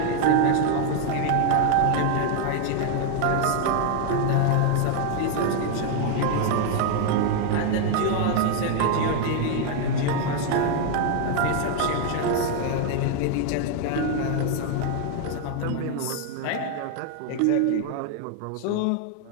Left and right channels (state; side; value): different; both; correlation 0.00